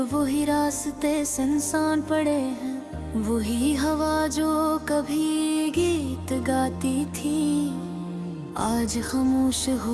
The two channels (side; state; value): both; identical; correlation 1.00